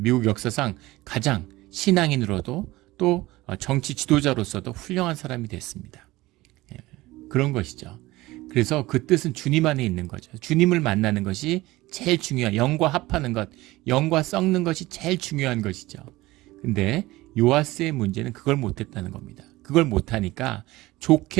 역사상 가장 신앙인으로도 또 정치 지도자로서도 훌륭한 사람이 됐습니다. 그런 것이죠. 그래서 그 뜻은 주님 안에 있는 거죠. 주님을 만나는 것이 제일 중요한, 영과 합하는 것, 영과 썩는 것이 제일 중요한 것이죠. 근데 요아스의 문제는 그걸 못했다는 겁니다. 그걸 못하니까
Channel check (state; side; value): quieter; left; 19.0 dB